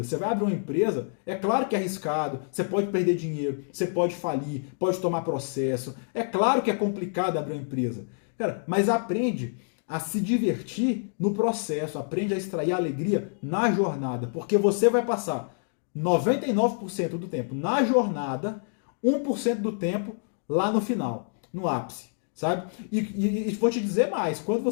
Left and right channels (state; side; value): silent; right; digital silence